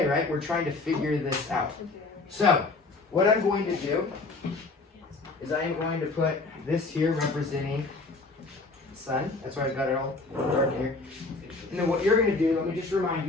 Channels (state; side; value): quieter; right; 3.6 dB